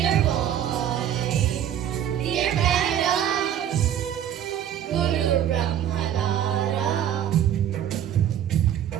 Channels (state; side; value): quieter; left; 10.3 dB